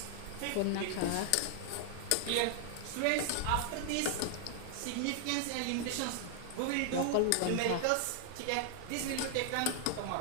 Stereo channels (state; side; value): different; both; correlation 0.00